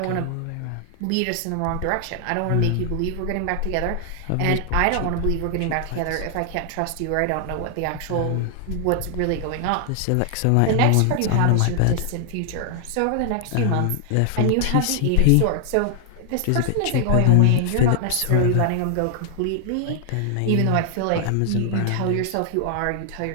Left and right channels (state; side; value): different; both; correlation 0.00